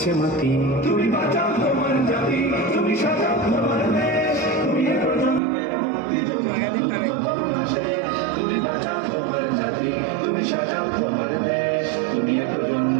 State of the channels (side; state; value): left; drops out; at 5.4 s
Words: মাতি। তুমি বাঁচাও তোমার জাতি, তুমি সাজাও তোমার দেশ, তুমি এ প্রজন্মের মুক্তিযোদ্ধা, যুদ্ধ করোনা শেষ। তুমি বাঁচাও তোমার জাতি, তুমি সাজাও তোমার দেশ, তুমি এ